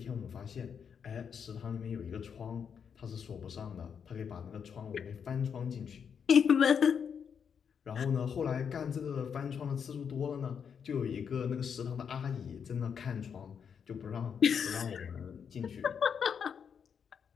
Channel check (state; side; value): quieter; right; 7.1 dB